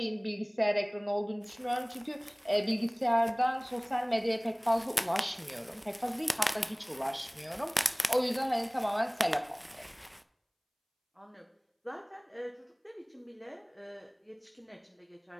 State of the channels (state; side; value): identical; both; correlation 1.00